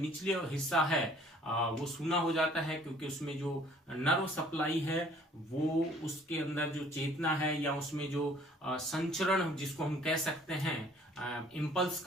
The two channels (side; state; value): both; normal; correlation 0.56